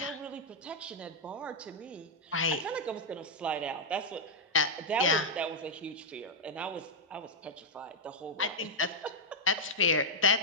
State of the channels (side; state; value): both; normal; correlation -0.03